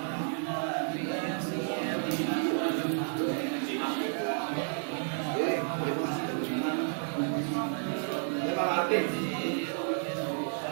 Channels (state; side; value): silent; left; 57 dB below the other